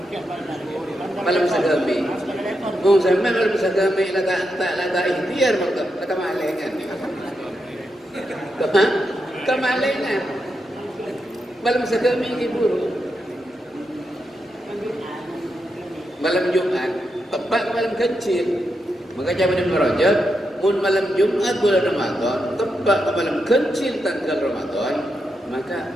Malam sagami. Oh, sampai malam sagami tak ikhtiar makna kemalengan. Kemalengan. Malam sagami iburu. Malam Jumat tepat malam kecil. Maka zaman Ibnu Rajab, mun malam Jumat bulan Ramadan tepat malam kecil tanggal Ramadan, maka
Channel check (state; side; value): normal; both; correlation 0.85